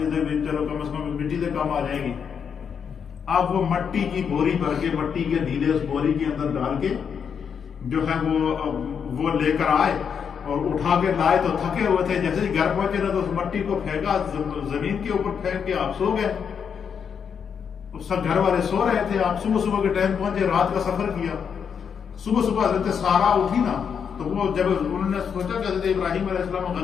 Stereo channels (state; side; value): quieter; right; 7.1 dB